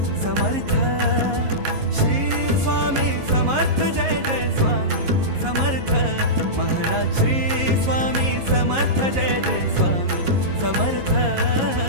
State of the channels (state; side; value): late; left; 11 ms